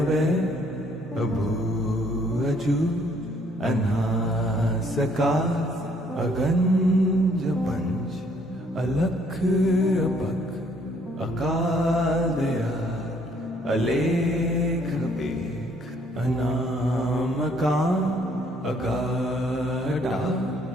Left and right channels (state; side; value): normal; both; correlation 0.65